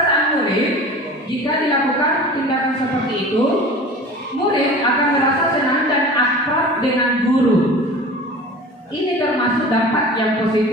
murid jika dilakukan tindakan seperti itu? Murid akan merasa senang dan akrab dengan guru. Ini termasuk dampak yang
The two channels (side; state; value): both; normal; correlation 0.39